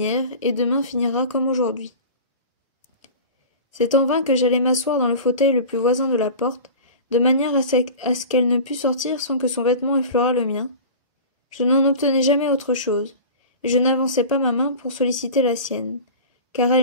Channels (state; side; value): inverted; both; correlation -0.35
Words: et demain finira comme aujourd'hui ». C'est en vain que j'allais m'asseoir dans le fauteuil le plus voisin de la porte, de manière à ce qu'elle ne pût sortir sans que son vêtement effleurât le mien. Je n'en obtenais jamais autre chose, et je n'avançais pas ma main pour solliciter la sienne, car